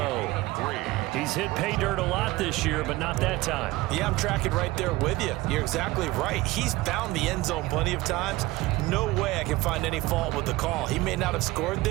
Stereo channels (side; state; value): left; quieter; 19.3 dB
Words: He's hit pay dirt a lot this year, but not that time. Yeah, I'm tracking right there with you. You're exactly right. He's found the end zone plenty of times. No way I can find any fault with the call. He may not have scored